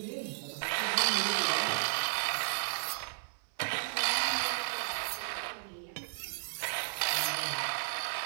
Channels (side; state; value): left; silent; 55 dB below the other